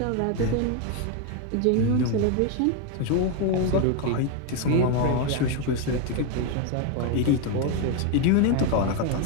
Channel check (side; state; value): both; different; correlation 0.01